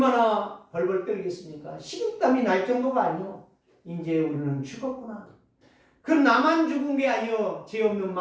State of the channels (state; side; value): identical; both; correlation 1.00